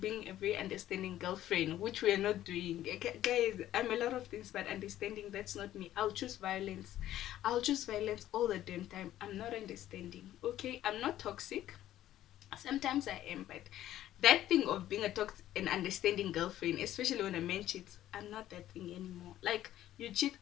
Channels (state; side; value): quieter; right; 13.0 dB